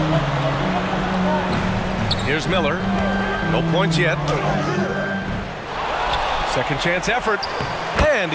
Here's Miller. No points yet. Second chance effort. And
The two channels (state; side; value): identical; both; correlation 1.00